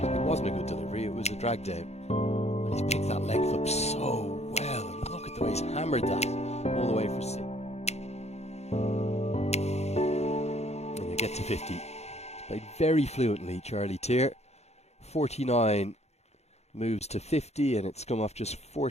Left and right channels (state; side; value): late; right; 0.31 ms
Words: It wasn't a good delivery, it was a drag down. And he's picked that length up so well. And look at the way he's hammered that all the way for six. And you get to 50. He's played very fluently, Charlie Tier. 49 moves to 50, and it's come off just